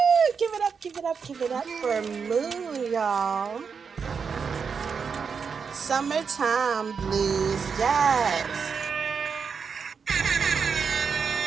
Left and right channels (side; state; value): left; quieter; 6.0 dB